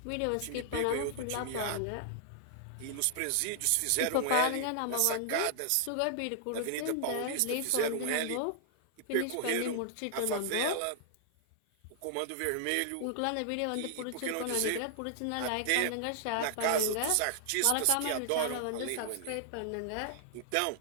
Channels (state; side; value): different; both; correlation -0.01